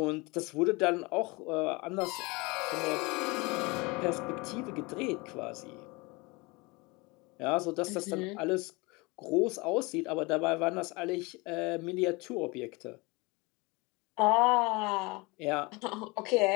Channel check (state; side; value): quieter; right; 25.8 dB